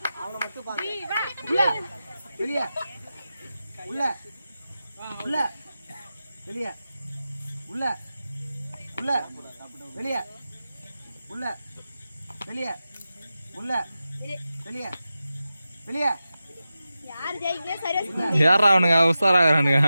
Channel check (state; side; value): inverted; both; correlation -0.93